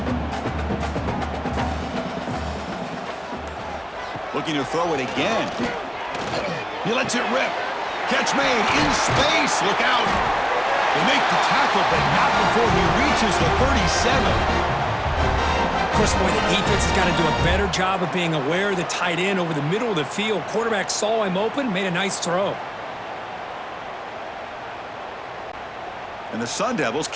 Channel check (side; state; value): both; identical; correlation 1.00